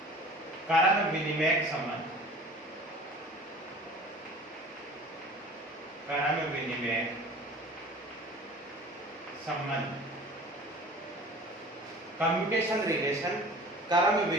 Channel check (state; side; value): normal; both; correlation 0.43